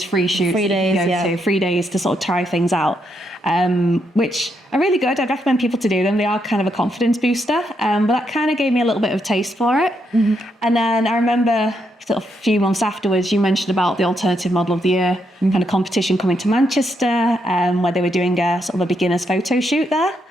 free shoots. 3 days, yeah. 3 days to sort of try things out, which are really good. I'd recommend people to do them. They are kind of a confidence booster, but that kind of gave me a little bit of a taste for it. Mm-hmm. And then I remember sort of a few months afterwards, you mentioned about the Alternative Model of the Year kind of competition coming to Manchester, where they were doing a sort of a beginner's photo shoot there.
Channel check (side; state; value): both; normal; correlation 0.79